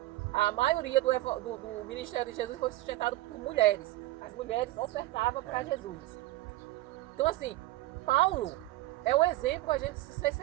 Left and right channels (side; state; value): left; quieter; 17.5 dB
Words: a maioria do ministério de Jesus foi sustentado por mulheres. As mulheres ofertavam para Jesus. Então, assim, Paulo é o exemplo a gente ser